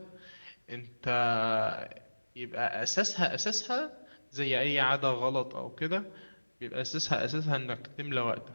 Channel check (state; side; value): inverted; both; correlation -1.00